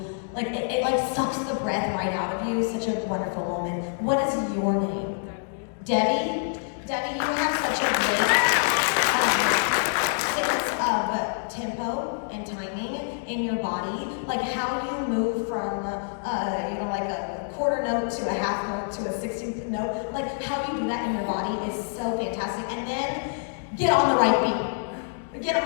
like, it like sucks the breath right out of you. Such a wonderful moment. What is your name? Debbie? Debbie, you have such a great sense of tempo and timing in your body. Like how you move from, like a quarter note to a half note to a 16th note. Like how you do that in your body is so fantastic. And then get on the right beat. Get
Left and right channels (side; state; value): right; silent; digital silence